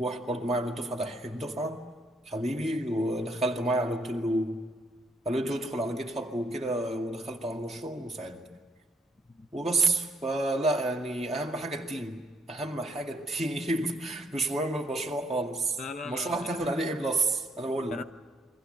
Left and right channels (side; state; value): both; normal; correlation 0.70